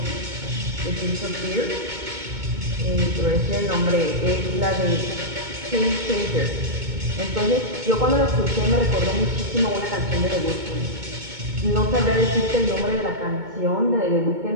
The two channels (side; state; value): left; late; 2.2 ms